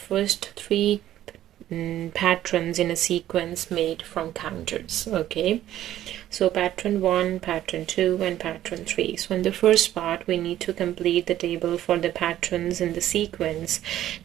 three patterns in a sequence made from counters. Okay, so pattern 1, pattern 2, and pattern 3. So in the first part, we need to complete the table for the patterns in the sequence.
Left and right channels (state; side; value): quieter; left; 12.7 dB